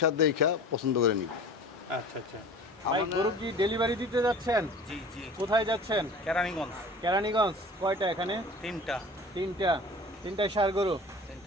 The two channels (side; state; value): both; normal; correlation 0.41